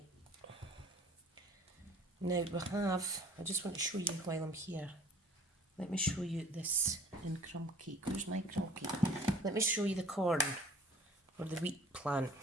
Now we have, I just want to show you while I'm here. Let me show you this in crumb cake. Where's my crumb cake? Let me show you the corn or the wheat plant.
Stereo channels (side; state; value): both; normal; correlation 0.51